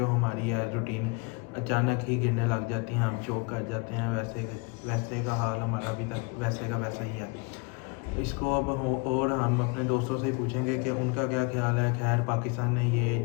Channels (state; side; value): quieter; right; 30.5 dB